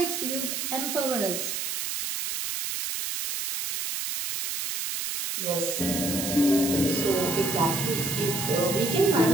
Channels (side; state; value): right; noise; hiss, 3 dB below the sound